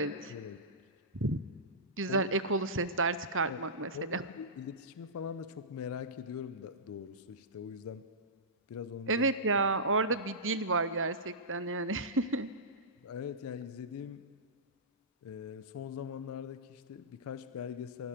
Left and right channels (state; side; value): normal; both; correlation -0.18